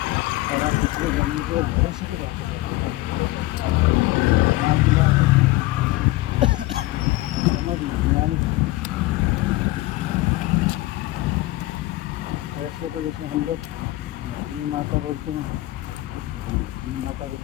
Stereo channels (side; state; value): right; quieter; 18.7 dB